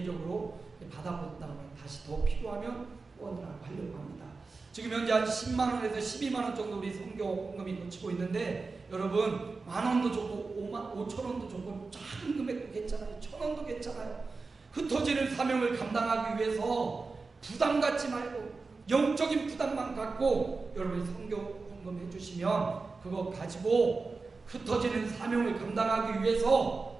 받아본 다음에 다시 더 필요하면 후원을 하려고 합니다. 지금 현재 한 10만원에서 12만원 정도 우리 선교헌금이 놓치고 있는데 여러분 만원도 좋고 5천원도 좋고 작은 금액도 괜찮아요. 1,000원도 괜찮아요. 흩어지는 사명을 감당하기 위해서 부담 갖지 말고 영적인 부담만 갖고 여러분이 선교헌금 해주시면 그거 가지고 흩어지는 사명을 감당하기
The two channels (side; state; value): left; quieter; 4.1 dB